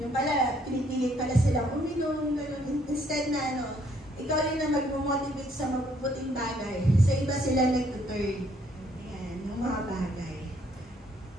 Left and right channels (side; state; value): both; normal; correlation 0.66